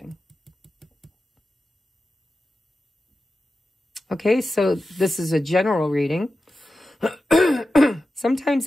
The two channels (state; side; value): normal; both; correlation 0.92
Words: Okay, so this is a general reading.